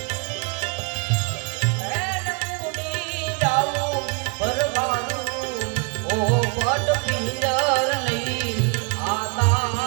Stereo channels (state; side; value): quieter; left; 34.2 dB